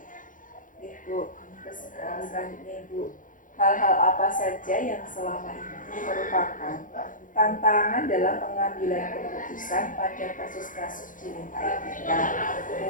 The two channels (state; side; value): late; right; 0.38 ms